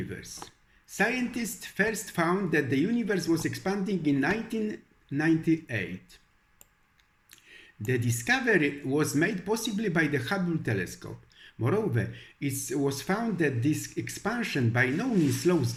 Scientists first found that the universe was expanding in 1998. The discovery was made possibly by the Hubble telescope. Moreover, it was found that this expansion by no means slows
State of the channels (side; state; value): both; identical; correlation 1.00